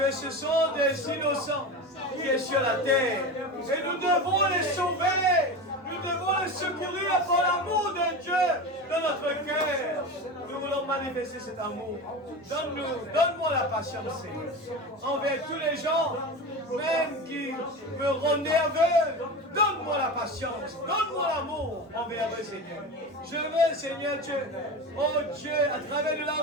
ce sont des innocents qui sont sur la terre. Et nous devons les sauver. Nous devons les secourir par l'amour de Dieu dans notre cœur. Nous voulons manifester cet amour. Donne-moi la patience, Seigneur, envers tous les gens, même qui me rendent nerveux. Donne-moi la patience, donne-moi l'amour envers eux, Seigneur. Je veux, Seigneur Dieu, oh Dieu, à travers de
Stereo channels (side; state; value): both; normal; correlation 0.26